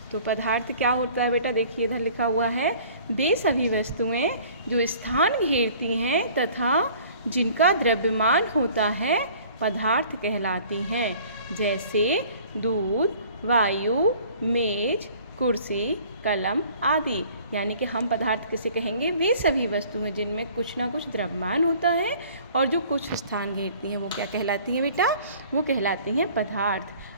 तो पदार्थ क्या होता है बेटा, देखिए इधर लिखा हुआ है, वे सभी वस्तुएं जो स्थान घेरती हैं तथा जिनका द्रव्यमान होता है पदार्थ कहलाती हैं, जैसे दूध, वायु, मेज, कुर्सी, कलम आदि। यानी कि हम पदार्थ किसे कहेंगे, वे सभी वस्तुएं जिनमें कुछ ना कुछ द्रव्यमान होता है और जो कुछ स्थान घेरती हैं वो क्या कहलाती हैं बेटा, वो कहलाती हैं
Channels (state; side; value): inverted; both; correlation -0.51